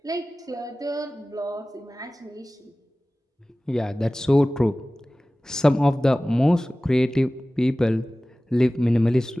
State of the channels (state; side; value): normal; both; correlation 0.97